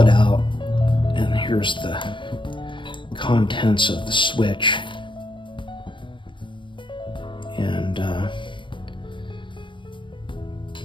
out, and here's the contents of the switch. And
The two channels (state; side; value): late; right; 0.24 ms